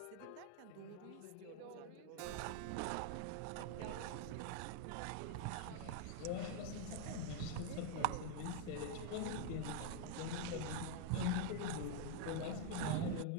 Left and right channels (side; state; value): both; different; correlation 0.00